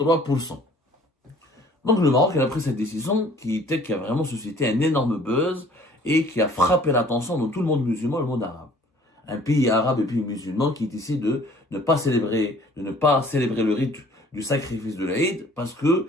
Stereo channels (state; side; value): normal; both; correlation 0.54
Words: Donc le Maroc a pris cette décision qui a vraiment suscité un énorme buzz et qui a frappé l'attention de tout le monde musulman, le monde arabe. Un pays arabe et pays musulman qui décide de ne pas célébrer le rite du sacrifice de l'Aïd parce que